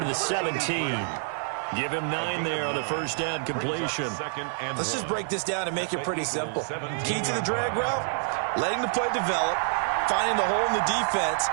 to the 17. Give him 9 there on the first down completion. Let's just break this down and make it pretty simple. Key to the drag route, letting the play develop, finding the hole in the defense,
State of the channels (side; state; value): left; silent; 60 dB below the other